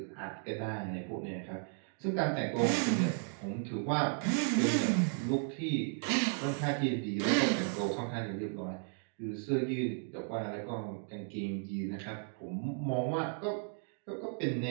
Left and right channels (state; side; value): silent; left; 55 dB below the other